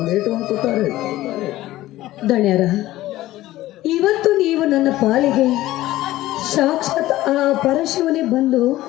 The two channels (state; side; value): quieter; right; 15.9 dB